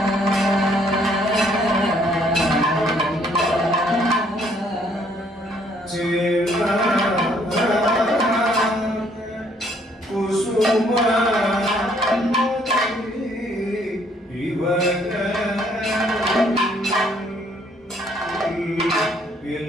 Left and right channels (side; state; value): both; normal; correlation 0.65